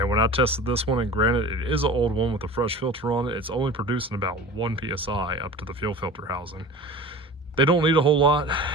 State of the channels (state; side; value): normal; both; correlation 0.37